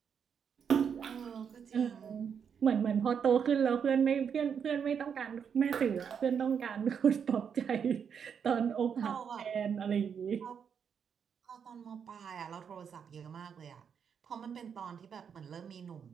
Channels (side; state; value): left; quieter; 7.2 dB